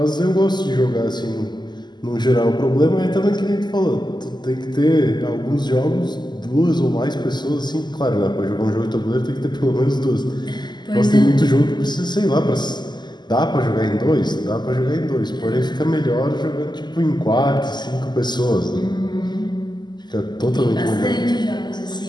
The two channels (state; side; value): late; right; 0.21 ms